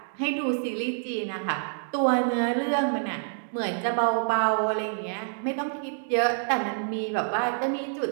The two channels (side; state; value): left; silent; digital silence